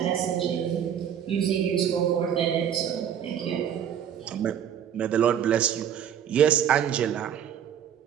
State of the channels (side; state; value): left; quieter; 9.2 dB